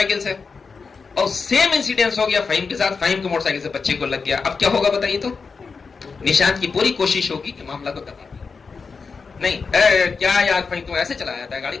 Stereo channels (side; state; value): right; quieter; 5.0 dB